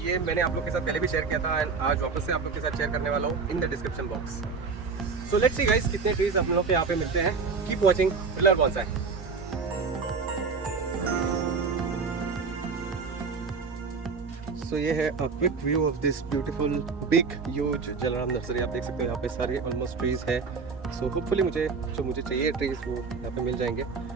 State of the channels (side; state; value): left; quieter; 4.9 dB